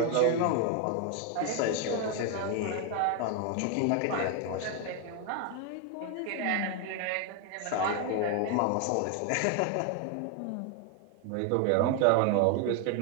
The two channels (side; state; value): both; different; correlation 0.01